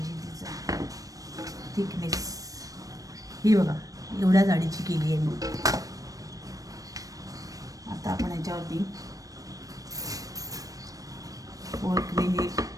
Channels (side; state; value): left; late; 0.17 ms